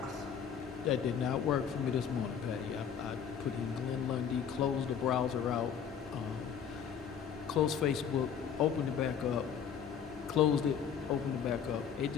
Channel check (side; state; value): right; quieter; 7.8 dB